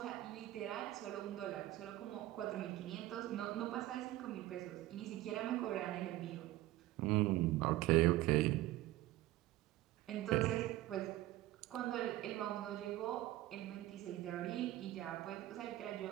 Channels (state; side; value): quieter; left; 16.1 dB